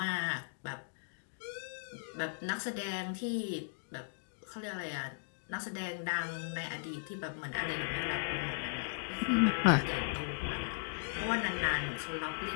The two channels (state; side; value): silent; right; digital silence